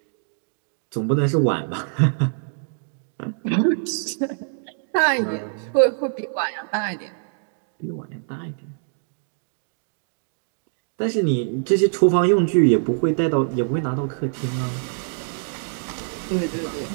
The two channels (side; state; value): left; silent; digital silence